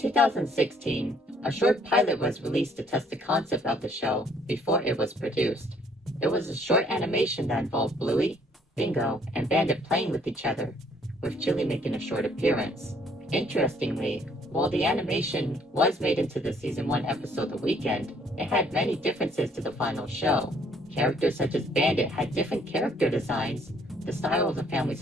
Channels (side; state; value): both; normal; correlation 0.63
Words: a short pilot was released to test the concept of the show before it was produced. It was a short animation that involved Bluey, Bingo, and Bandit playing with each other, with Chili making a short appearance. Interestingly, while the animation was made into the season 1 episode The Weekend, it had many differences to the final show. Characters such as Bandit had different character designs, the style of the family's